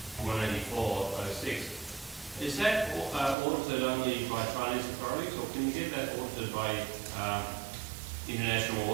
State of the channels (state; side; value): drops out; left; at 3.4 s